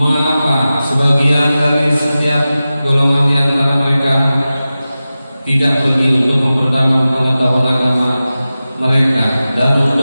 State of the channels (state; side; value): inverted; both; correlation -0.95